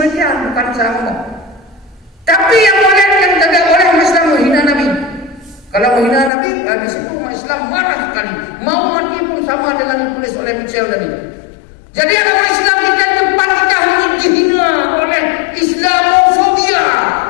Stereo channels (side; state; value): right; drops out; at 6.3 s